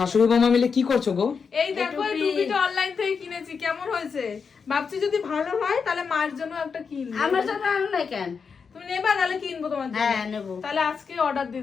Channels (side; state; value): right; quieter; 5.7 dB